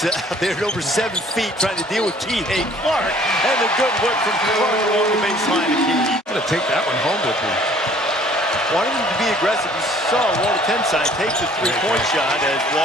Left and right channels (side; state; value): both; normal; correlation 0.55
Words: out there at over 7 feet trying to deal with Kihei Clark. And the good work from Clark along the baseline of Key. I'm going to take that one home with me. Wanting him to be aggressive. You saw Walter Tenside take the 3-point shot as